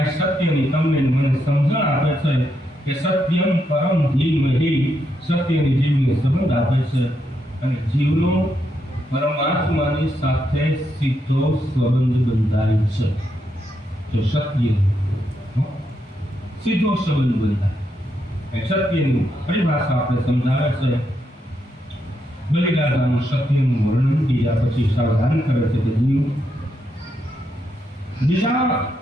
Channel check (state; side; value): normal; both; correlation 0.80